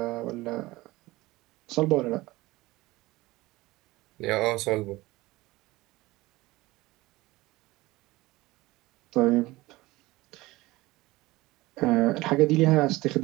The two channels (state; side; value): quieter; left; 19.8 dB